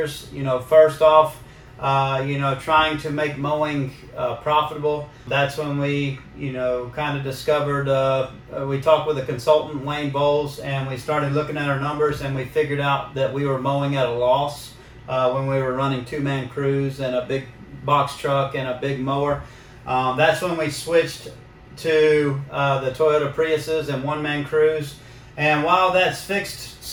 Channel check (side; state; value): both; identical; correlation 1.00